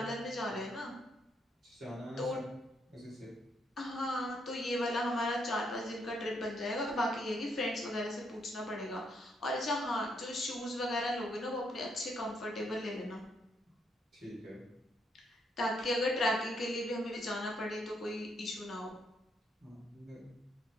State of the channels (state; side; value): normal; both; correlation 0.74